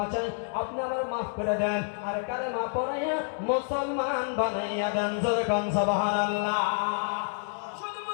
চাই, আপনি আমার মাফ করে দেন। আর কারে মাফ করাইয়া মুসলমান বানাইয়া দেন। জোরে কোন সুবহানাল্লাহ। শুধু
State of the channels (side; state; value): right; silent; digital silence